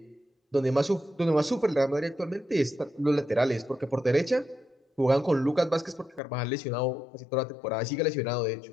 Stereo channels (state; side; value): drops out; right; at 6.2 s